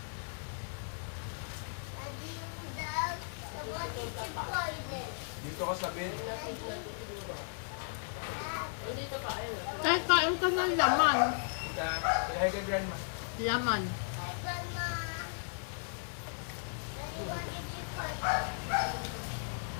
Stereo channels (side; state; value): right; silent; digital silence